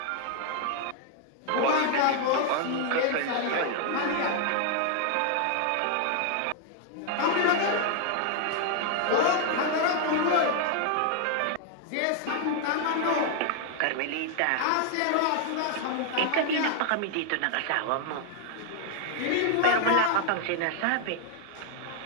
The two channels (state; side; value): different; both; correlation 0.00